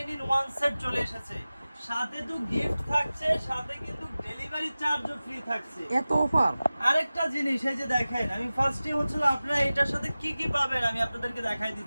in 1 সেট চলে এসেছে। সাথে তো গিফট থাকছে, সাথে কিন্তু ডেলিভারি চার্জও ফ্রি থাকছে। এত অফার! আরেকটা জিনিস এই যে দেখেন, আমি ফার্স্টে হচ্ছিল আপনারা এটার সাথে কি কি পাবেন আমি আপনাদেরকে দেখাই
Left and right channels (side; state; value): both; inverted; correlation -0.97